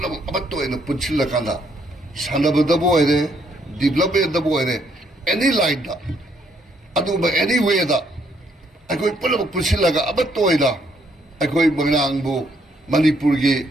अमत्तो एन पुनसिलकांदा सानबदबो ओइरे डेवलपमेंटदबो ओइरे एनी लाइन दा अदुबा एनी वे दा अखोई पुलम पुनसिलगा अमत्तो ओइदा अखोई मोयरांगबु मणिपुर की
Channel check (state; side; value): normal; both; correlation 0.71